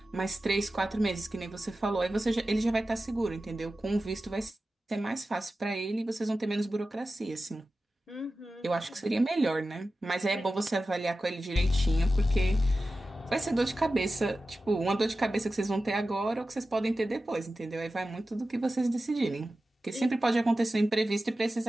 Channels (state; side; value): normal; both; correlation 0.94